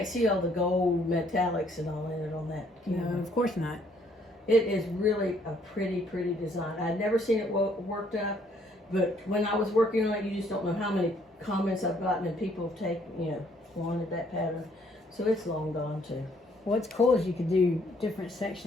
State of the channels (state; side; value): normal; both; correlation 0.66